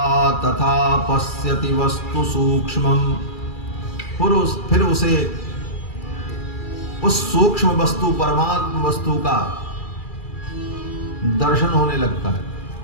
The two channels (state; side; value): late; right; 2.4 ms